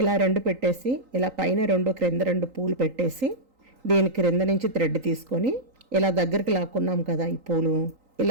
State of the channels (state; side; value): late; left; 3.9 ms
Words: ఇలా 2 పెట్టేసి ఇలా పైన 2 క్రింద 2 పూలు పెట్టేసి దీని క్రింద నుంచి థ్రెడ్ తీసుకొని ఇలా దగ్గరికి లాక్కున్నాం కదా, ఈ పూలు